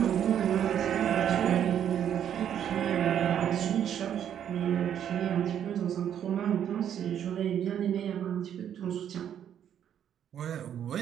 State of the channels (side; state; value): left; quieter; 9.6 dB